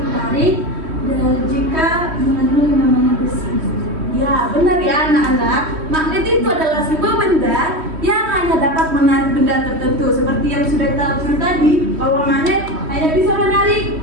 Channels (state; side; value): late; left; 3.1 ms